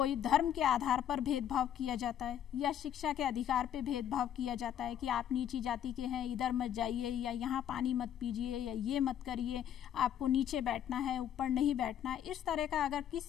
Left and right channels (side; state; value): right; quieter; 10.1 dB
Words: धर्म के आधार पर भेदभाव किया जाता है या शिक्षा के अधिकार पे भेदभाव किया जाता है कि आप नीची जाति के हैं, इधर मत जाइए, या यहाँ पानी मत पीजिए, या ये मत करिए, आपको नीचे बैठना है, ऊपर नहीं बैठना है, इस तरह का अगर